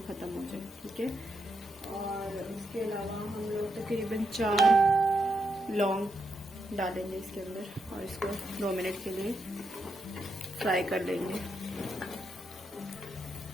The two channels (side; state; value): both; normal; correlation 0.82